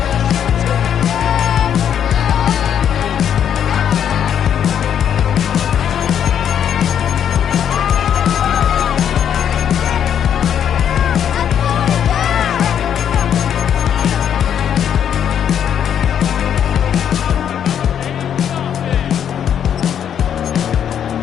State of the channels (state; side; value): quieter; right; 9.0 dB